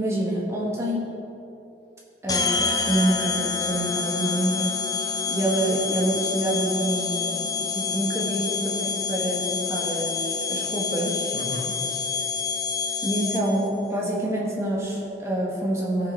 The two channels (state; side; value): normal; both; correlation 0.36